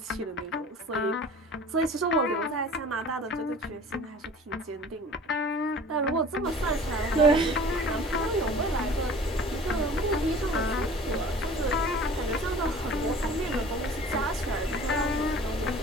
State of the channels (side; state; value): both; normal; correlation 0.45